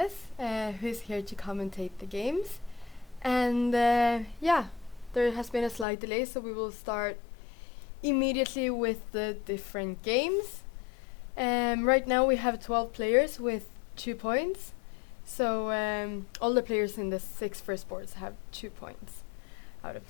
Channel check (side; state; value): right; drops out; at 5.9 s